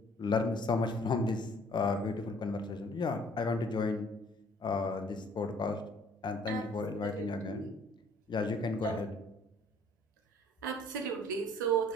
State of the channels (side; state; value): both; normal; correlation 0.57